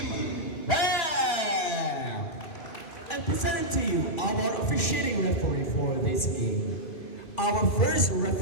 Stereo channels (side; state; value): right; late; 2.5 ms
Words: Bam. And presenting to you our officiating referee for this game. Our first